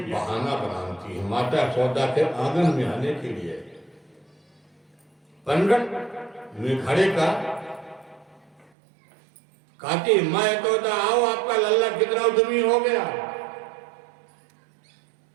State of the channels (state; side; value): drops out; left; at 8.7 s